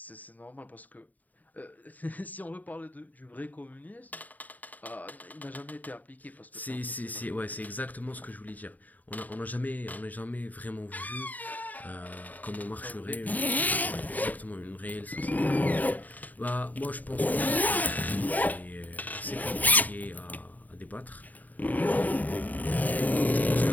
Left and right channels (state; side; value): late; right; 0.079 ms